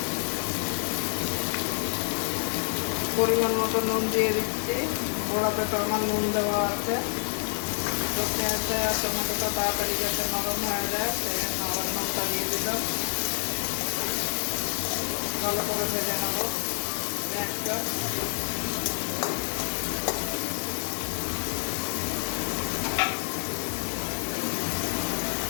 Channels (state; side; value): silent; right; digital silence